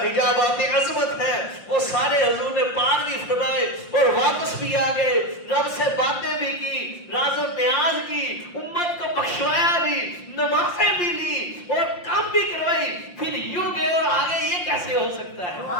عظمت ہے وہ سارے حضور نے پار بھی فرمائے اور واپس بھی آ گئے. رب سے باتیں بھی کی راز و نیاز کی امت کو بخشوایا بھی نمازیں بھی لی اور کام بھی کروائی پھر یوں گئے اور آگے. یہ کیسے ہو سکتا ہے؟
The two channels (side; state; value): right; late; 5.7 ms